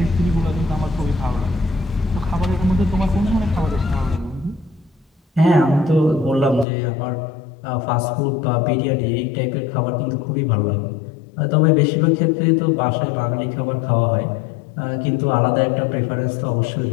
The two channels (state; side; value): drops out; right; at 6.7 s